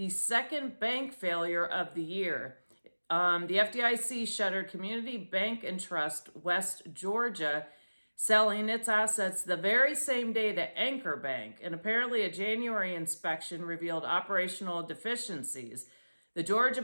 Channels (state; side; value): inverted; both; correlation -1.00